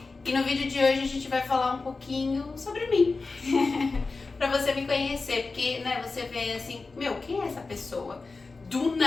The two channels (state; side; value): quieter; right; 3.9 dB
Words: E no vídeo de hoje a gente vai falar um pouquinho sobre mim. Pra você me conhecer, porque né, você vê assim, quem é essa pessoa? Do